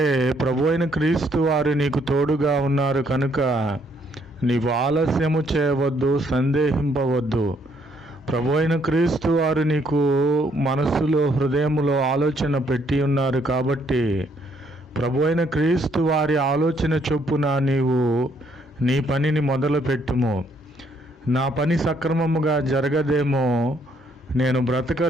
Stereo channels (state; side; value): normal; both; correlation 0.69